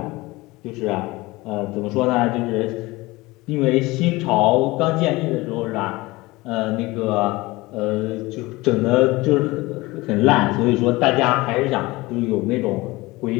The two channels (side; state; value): right; quieter; 21.2 dB